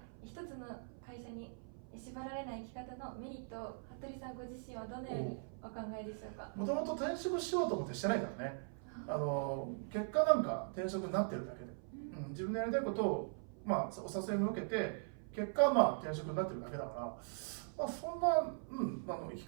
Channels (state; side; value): silent; left; 51 dB below the other